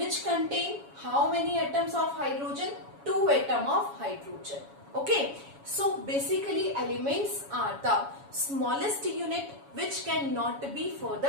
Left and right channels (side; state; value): left; late; 7.2 ms